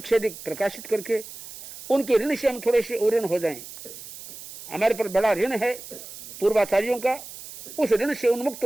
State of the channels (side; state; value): right; noise; hiss, 14 dB below the sound